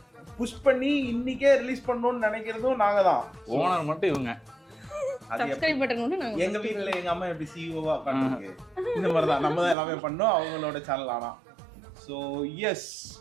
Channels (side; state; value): left; drops out; at 9.8 s